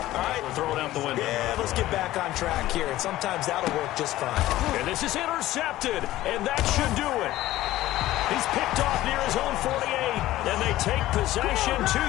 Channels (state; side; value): quieter; right; 15.6 dB